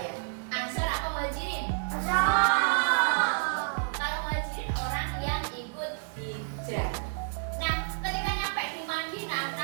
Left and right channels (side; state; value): left; silent; digital silence